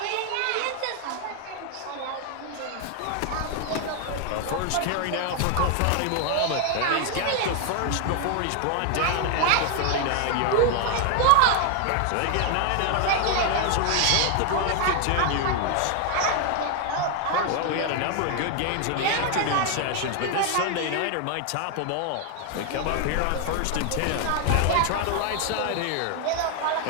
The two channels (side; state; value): both; different; correlation 0.01